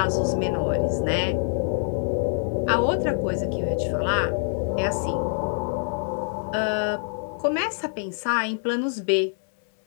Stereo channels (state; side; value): silent; right; 62 dB below the other